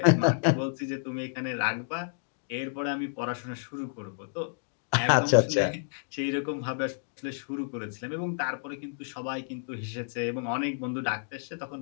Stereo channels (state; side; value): silent; right; digital silence